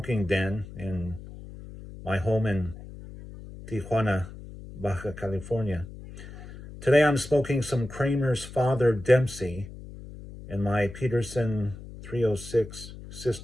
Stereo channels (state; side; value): noise; left; hum, 14 dB below the sound